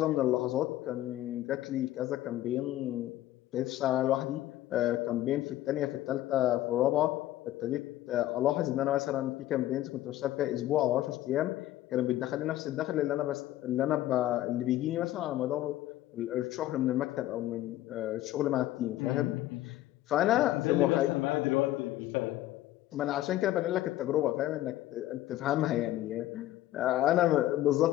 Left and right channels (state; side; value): quieter; right; 14.5 dB